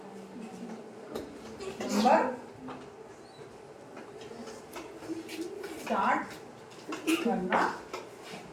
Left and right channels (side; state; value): both; identical; correlation 1.00